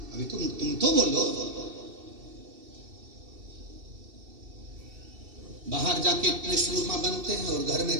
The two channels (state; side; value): late; left; 2.7 ms